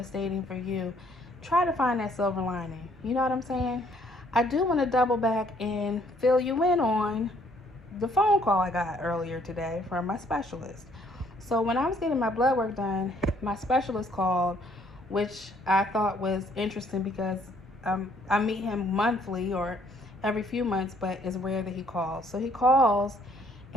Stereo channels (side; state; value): both; normal; correlation 0.64